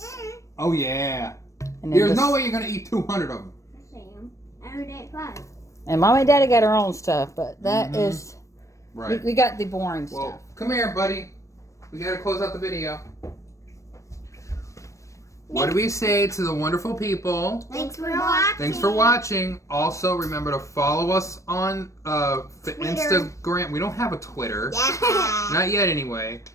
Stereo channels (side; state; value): right; late; 0.15 ms